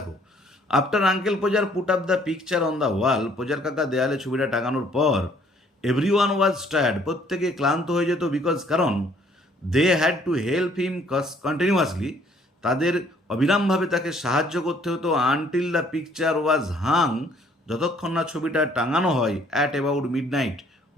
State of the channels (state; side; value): normal; both; correlation 0.61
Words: after uncle Podger put up the picture on the wall, Podger কাকা দেয়ালে ছবিটা টাঙানোর পর, এভরি ওয়ান ওয়াজ টায়ার্ড, প্রত্যেকে ক্লান্ত হয়ে যেত, বিকজ কারণ, they had to help him continuously, তাদের অবিরামভাবে তাকে সাহায্য করতে হতো, until the picture was Hang, যতক্ষণ না ছবিটা টাঙানো হয়, অ্যাট অ্যাবাউট মিড নাইট,